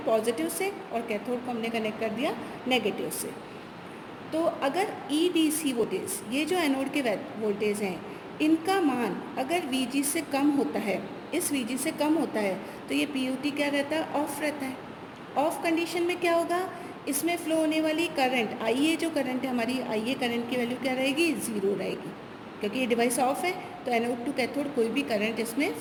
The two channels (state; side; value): identical; both; correlation 1.00